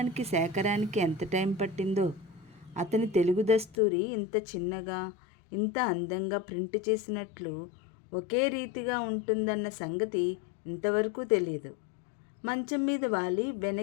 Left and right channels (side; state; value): right; drops out; at 3.8 s